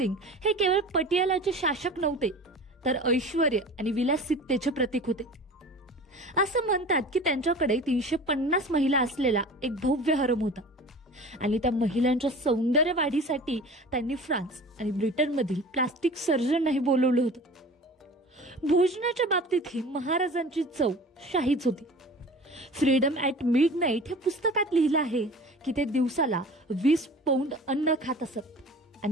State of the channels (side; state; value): both; normal; correlation 0.39